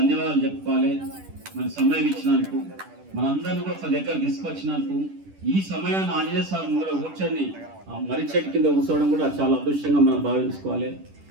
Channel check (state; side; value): late; left; 10 ms